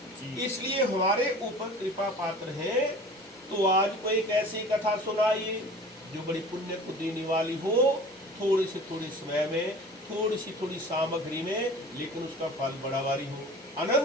इसलिए हमारे ऊपर कृपा पात्र हैं। तो आज को एक ऐसी कथा सुनाइए जो बड़ी पुण्य को देने वाली हो, थोड़ी से थोड़ी समय में, थोड़ी सी थोड़ी सामग्री में, लेकिन उसका फल बड़ा वाली हो,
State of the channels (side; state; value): both; normal; correlation 0.42